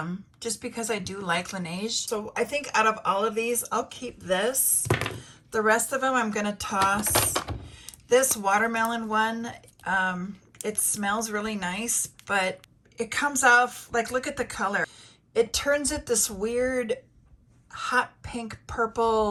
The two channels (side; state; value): both; identical; correlation 1.00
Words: just because I do like Laneige. So I think out of all of these, I'll keep this. The rest of them I'm gonna toss. This watermelon one, it smells really nice, but it comes off, like, look at the color. It turns it this weird hot pink